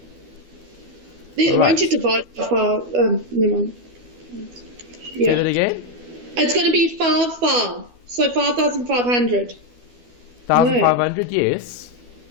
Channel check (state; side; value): late; left; 12 ms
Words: Then, won't you divide by 5? Never mind. Say that again? It's going to be 5. So 5,500. 1,500, yes.